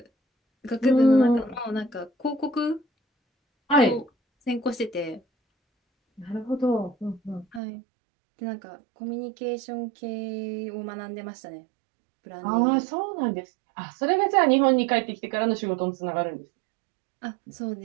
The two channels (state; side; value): drops out; left; at 7.6 s